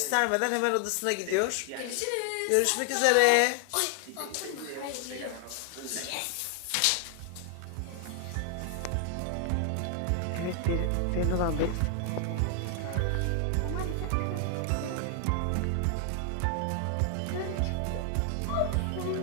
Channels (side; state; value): both; different; correlation 0.00